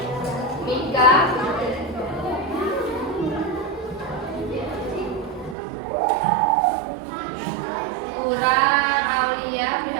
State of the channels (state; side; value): drops out; left; at 5.6 s